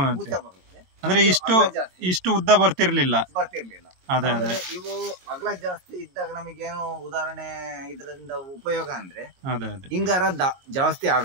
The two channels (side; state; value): left; late; 22 ms